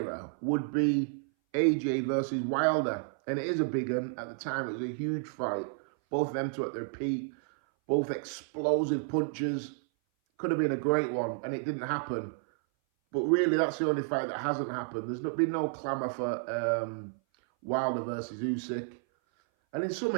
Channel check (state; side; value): silent; left; 57 dB below the other